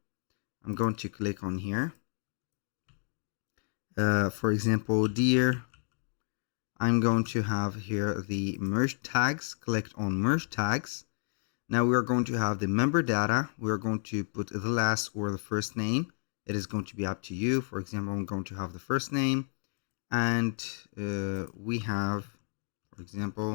I'm going to click on here. For example, dear, I'm going to have here the merge tags. Click on merge tags. Now we are going to have the member data. We are going to put the last or the first name. It is going to be up to you. For example, I'm going to have the first name, and we have, for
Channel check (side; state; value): right; silent; 57 dB below the other